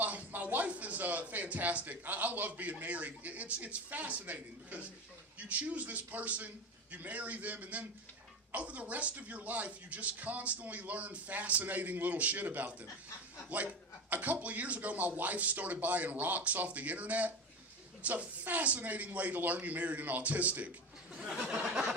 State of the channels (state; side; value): normal; both; correlation 0.23